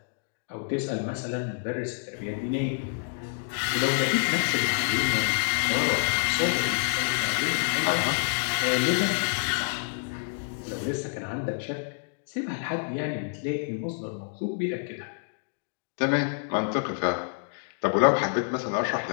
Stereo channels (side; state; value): right; silent; digital silence